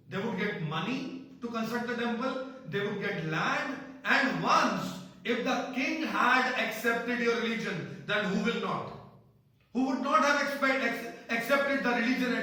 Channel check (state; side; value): identical; both; correlation 1.00